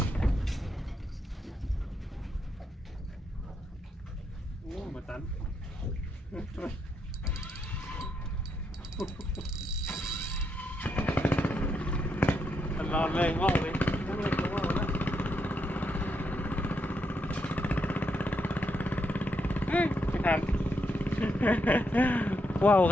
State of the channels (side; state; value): both; normal; correlation 0.79